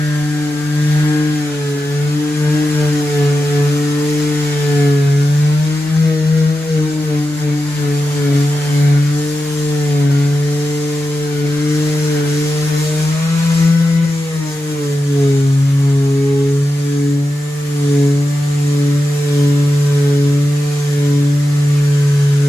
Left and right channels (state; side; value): normal; both; correlation 0.90